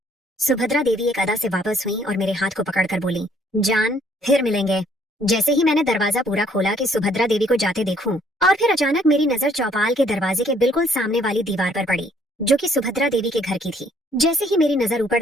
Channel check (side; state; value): both; normal; correlation 0.63